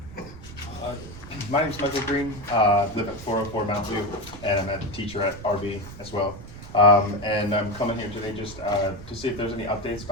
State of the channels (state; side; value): noise; right; rumble, 14 dB below the sound